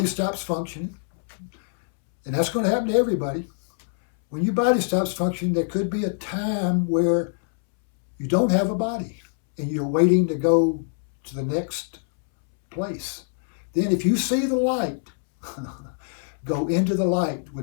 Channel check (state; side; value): silent; right; 63 dB below the other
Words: stops functioning, and that's going to happen to everybody, when your body stops functioning, there could be a time where you don't have a body and you're waiting to go to the next place. Then if you see the light, go into the light